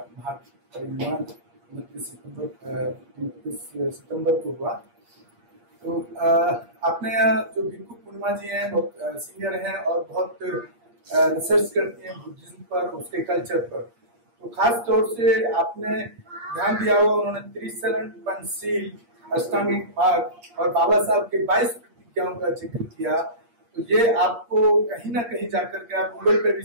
महापरिनिर्वाण 29 सितंबर को हुआ। तो अपने यहाँ जो भिक्खु पूर्णिमा जी हैं, बहुत सीनियर हैं और बहुत रिसर्च करती हैं बुद्धिज्म पर, उसके कल्चर पर। तो खास तौर से आपने ध्यान दिया होगा, उन्होंने त्रिशरण, पंचशील, अष्टांगिक मार्ग और बाबा साहब के 22 प्रतिज्ञाओं का जिक्र किया। तो ये आपको कहीं ना कहीं जाकर के आप गूगल पे भी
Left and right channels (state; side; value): late; left; 8.5 ms